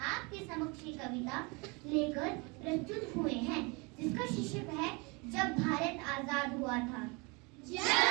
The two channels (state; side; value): quieter; left; 28.8 dB